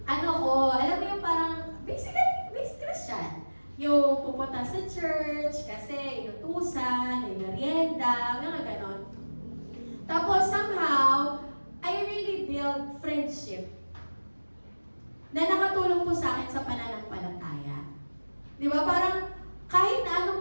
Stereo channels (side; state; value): both; inverted; correlation -1.00